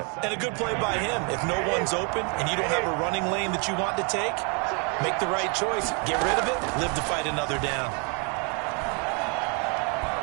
And a good play by him. If no one's open and you don't have a running lane that you want to take, make the right choice. Get rid of it. Live to fight another down.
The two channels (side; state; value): left; quieter; 35.3 dB